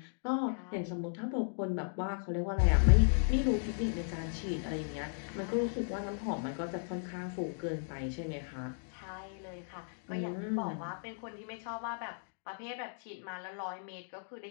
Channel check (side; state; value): right; silent; digital silence